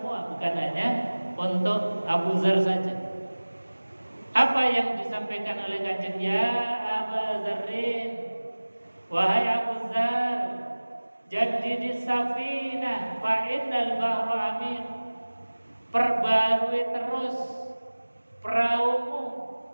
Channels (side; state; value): both; inverted; correlation -1.00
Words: bukan hanya untuk Abu Dzar saja. Apa yang disampaikan oleh Kanjeng? Ya Aba Dzarrin, wahai Abu Dzar, jaddidis safinah fa innal bahra amin. Perbarui terus peraumu,